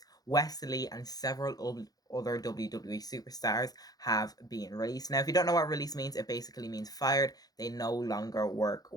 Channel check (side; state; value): right; late; 0.18 ms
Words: Wesley and several other WWE superstars have been released. Now, if you don't know what release means, it basically means fired. They no longer work